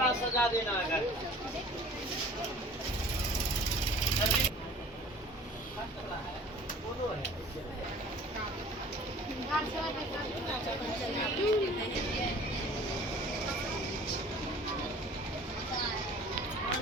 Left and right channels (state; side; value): normal; both; correlation 0.47